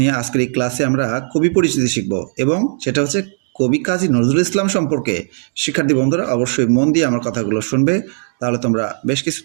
আজকের এই ক্লাসে আমরা কবি পরিচিতি শিখব এবং সেটা হচ্ছে কবি কাজী নজরুল ইসলাম সম্পর্কে। শিক্ষার্থী বন্ধুরা অবশ্যই মন দিয়ে আমার কথাগুলো শুনবে, তাহলে তোমরা বেশ কিছু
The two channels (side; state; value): left; silent; digital silence